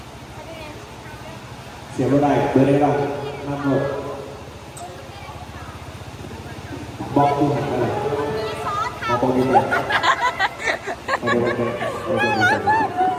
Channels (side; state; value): both; identical; correlation 1.00